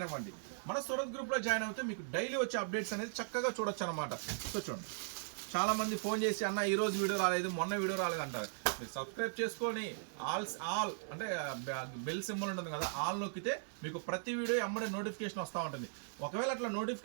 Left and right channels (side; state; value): left; silent; 52 dB below the other